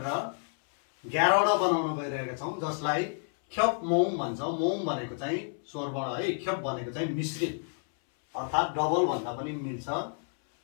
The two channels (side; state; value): right; silent; 58 dB below the other